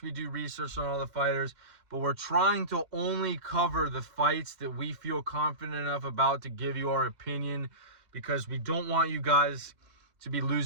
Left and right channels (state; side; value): late; left; 2.0 ms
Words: we do research on all the fighters. But we're trying to only cover the fights that we feel confident enough about to give you our opinion, because we don't want you guys to be